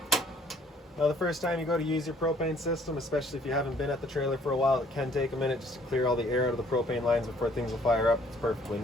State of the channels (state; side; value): normal; both; correlation 0.60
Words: Now the first time you go to use your propane system, especially if you haven't been at the trailer for a while, it can take a minute just to clear all the air out of the propane lines before things will fire up. It's perfectly